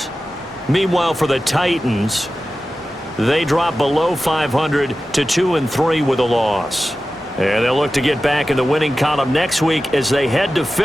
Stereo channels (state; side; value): normal; both; correlation 0.94